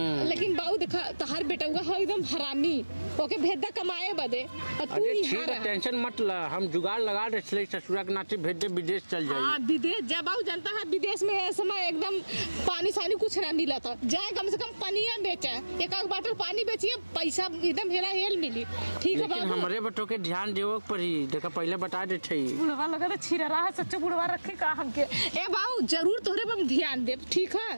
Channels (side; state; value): both; inverted; correlation -1.00